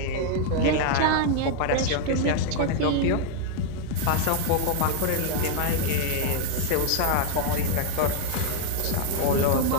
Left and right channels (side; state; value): both; different; correlation 0.00